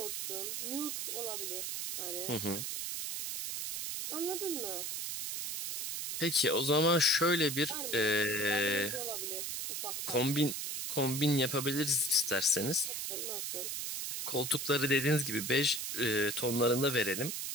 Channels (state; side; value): noise; right; hiss, 4 dB below the sound